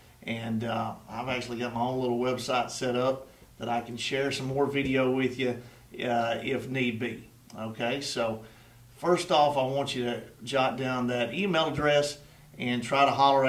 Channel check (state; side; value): identical; both; correlation 1.00